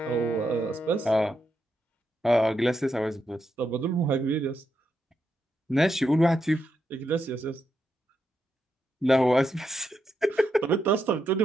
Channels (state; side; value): normal; both; correlation 0.83